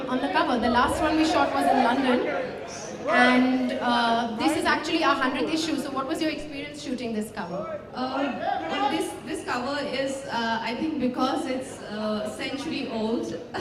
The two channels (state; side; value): identical; both; correlation 1.00